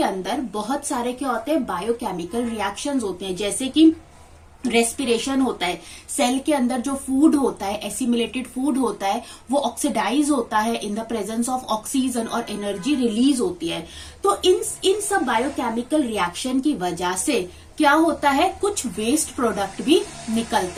बहुत सारे क्या होते हैं? बायोकेमिकल रिएक्शंस होते हैं। जैसे कि रेस्पिरेशन होता है, सेल के अंदर जो फूड होता है, एसिमिलेटेड फूड होता है, वो ऑक्सीडाइज होता है in the presence of oxygen और एनर्जी रिलीज होती है। तो इन सब बायोकेमिकल रिएक्शन की वजह से क्या होता है? कुछ वेस्ट प्रोडक्ट भी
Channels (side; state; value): both; identical; correlation 1.00